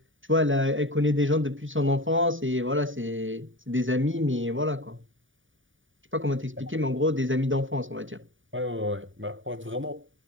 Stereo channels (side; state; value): left; late; 0.57 ms